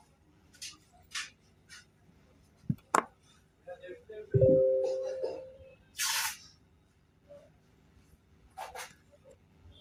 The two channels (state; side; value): identical; both; correlation 1.00